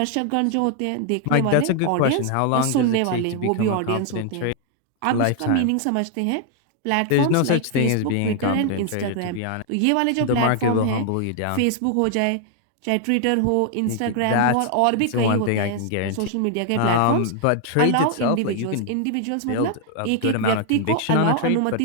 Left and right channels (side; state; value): both; different; correlation 0.00